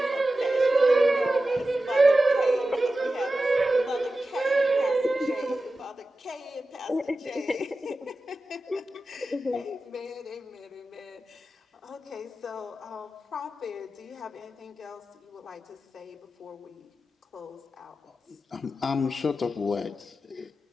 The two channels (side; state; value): both; normal; correlation 0.93